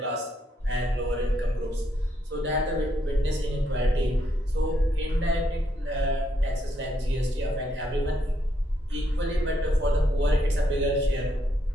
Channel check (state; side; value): normal; both; correlation 0.76